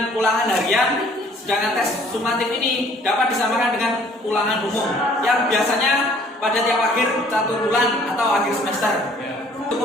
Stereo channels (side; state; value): both; normal; correlation 0.57